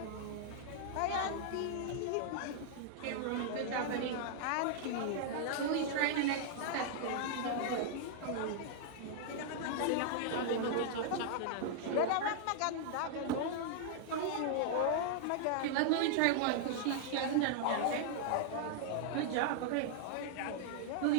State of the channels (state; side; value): different; both; correlation -0.01